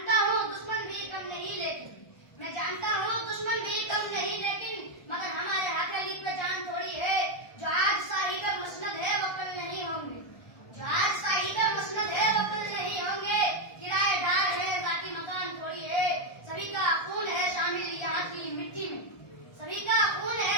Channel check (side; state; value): right; late; 1.2 ms